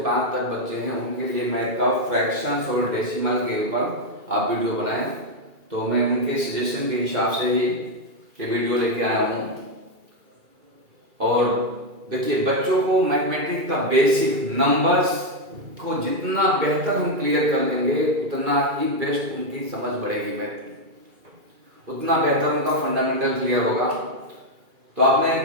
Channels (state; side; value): late; left; 2.3 ms